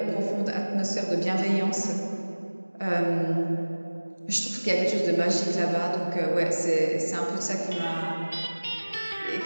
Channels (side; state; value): both; inverted; correlation -1.00